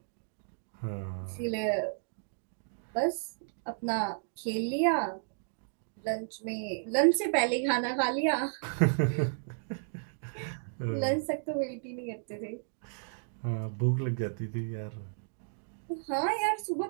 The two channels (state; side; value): silent; left; digital silence